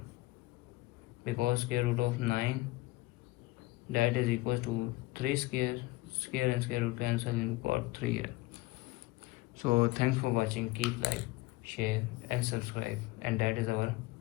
because square root of 9 that is equals to 3 square and square root cancel and we got 3 here. So thanks for watching, keep like, share and subscribe, and that is our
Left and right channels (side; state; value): right; quieter; 19.5 dB